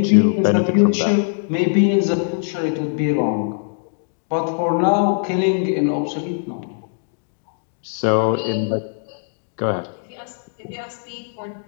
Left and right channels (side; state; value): right; silent; digital silence